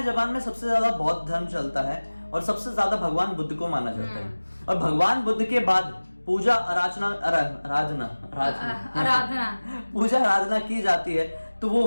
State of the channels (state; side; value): inverted; both; correlation -1.00